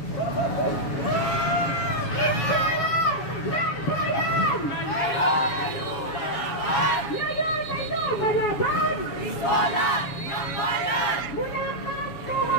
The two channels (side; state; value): right; late; 7.1 ms